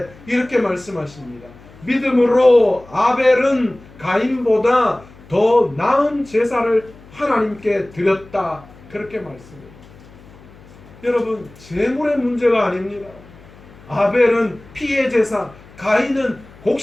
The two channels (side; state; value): left; noise; hum, 23 dB below the sound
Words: 이렇게 말씀하십니다. 믿음으로 아벨은 가인보다 더 나은 제사를 하나님께 드렸다. 그렇게 말씀합니다. 여러분, 제물의 문제가 아닙니다. 아벨은 피의 제사, 가인은